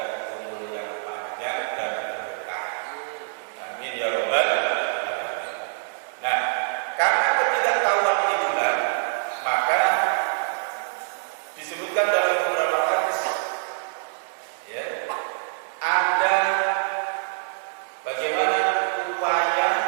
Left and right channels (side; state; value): left; silent; digital silence